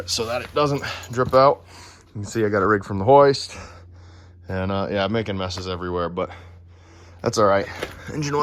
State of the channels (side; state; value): both; identical; correlation 1.00